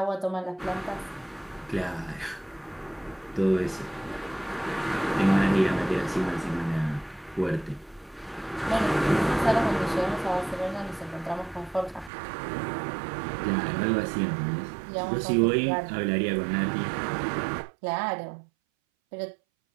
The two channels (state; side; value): drops out; left; at 12.1 s